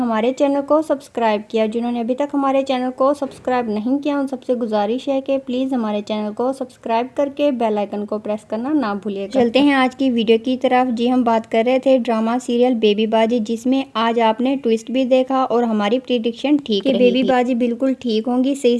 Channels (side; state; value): both; identical; correlation 1.00